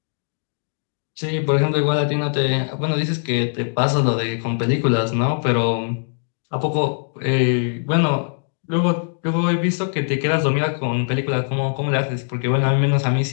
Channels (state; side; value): silent; right; digital silence